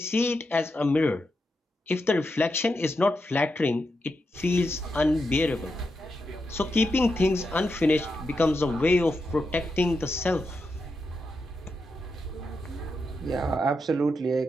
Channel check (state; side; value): normal; both; correlation 0.86